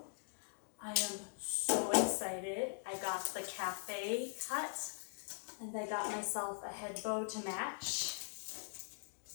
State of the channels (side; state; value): right; silent; digital silence